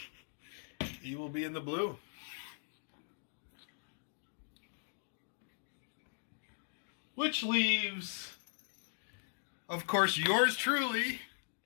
He will be in the blue. Which leaves, of course, yours truly.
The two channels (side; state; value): right; silent; digital silence